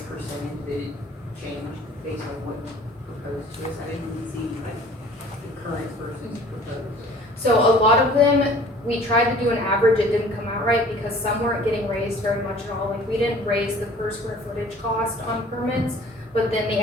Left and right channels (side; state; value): both; normal; correlation 0.50